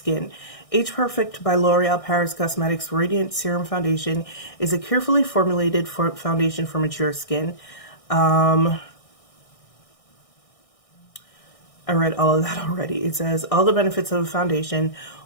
Age Perfect by L'Oreal Paris Cosmetics Radiant Serum Foundation is a carefully formulated foundation for mature skin. I read all of that already. It says all the benefits of a foundation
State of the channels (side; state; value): right; late; 1.6 ms